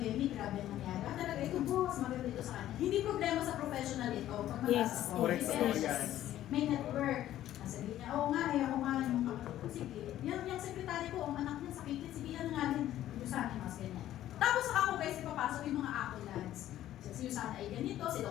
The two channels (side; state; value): right; quieter; 12.9 dB